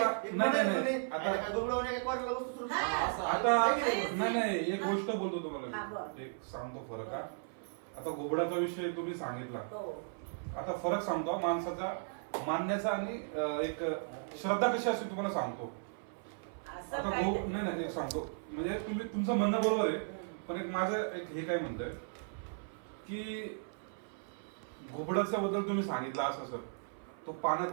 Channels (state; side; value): silent; left; 54 dB below the other